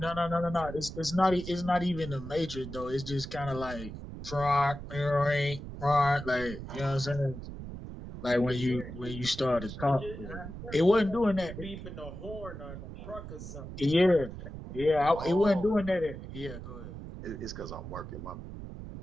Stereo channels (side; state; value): right; noise; rumble, 10 dB below the sound